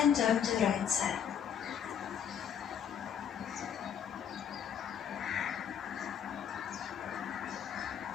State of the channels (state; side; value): quieter; right; 8.4 dB